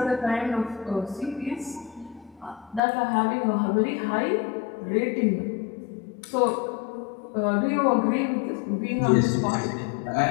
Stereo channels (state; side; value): drops out; right; at 2.8 s